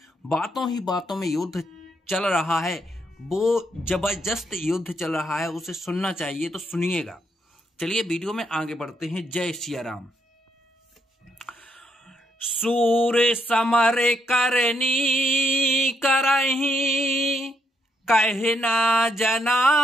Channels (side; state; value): both; normal; correlation 0.76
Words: बातों ही बातों में युद्ध चल रहा है, वो जबरदस्त युद्ध चल रहा है, उसे सुनना चाहिए। तो सुनिएगा। चलिए वीडियो में आगे बढ़ते हैं। जय सिया राम। सूर समर करनी करही कहना जना